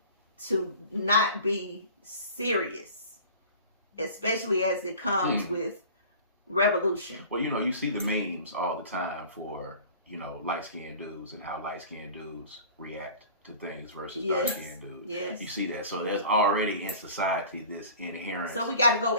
to not be serious, especially as it comes with revolution. Well, you know, you see the memes all the time for, you know, light-skinned dudes and how light-skinned dudes react to things versus dark-skinned dudes. Yes. You see that. So there's already in society this inherent. So we got to go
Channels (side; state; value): both; inverted; correlation -0.42